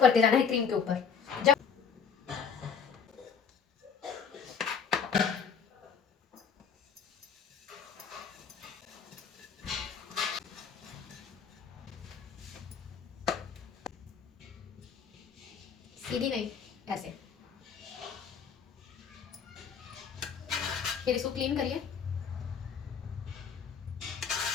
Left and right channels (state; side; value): quieter; right; 6.5 dB